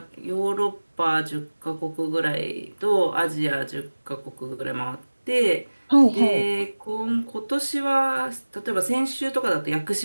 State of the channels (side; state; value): both; inverted; correlation -1.00